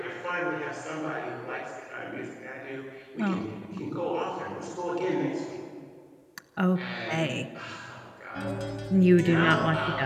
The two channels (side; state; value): both; identical; correlation 1.00